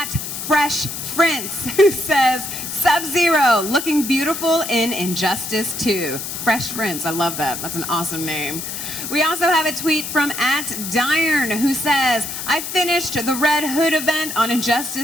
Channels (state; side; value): noise; left; hiss, 6 dB below the sound